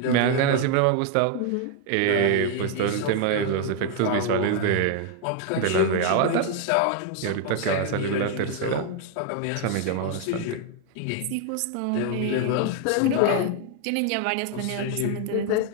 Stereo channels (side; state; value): both; different; correlation 0.00